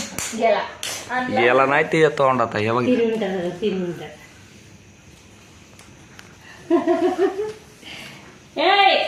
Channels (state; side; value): identical; both; correlation 1.00